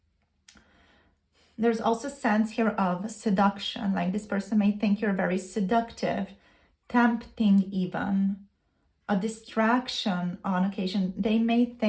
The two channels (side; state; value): both; identical; correlation 1.00